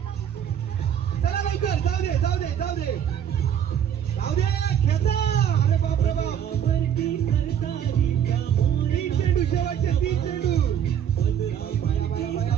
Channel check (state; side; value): quieter; left; 9.2 dB